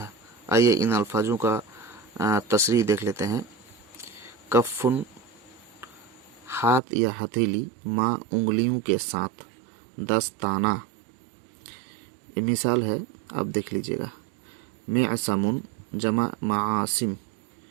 آئیے ان الفاظوں کا تصریح دیکھ لیتے ہیں۔ کفن ہاتھ یا ہتھیلی، ما انگلیوں کے ساتھ، دستانہ۔ یہ مثال ہے، آپ دیکھ لیجیے گا۔ معصم جمع معاصم،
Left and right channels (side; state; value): left; drops out; at 6.8 s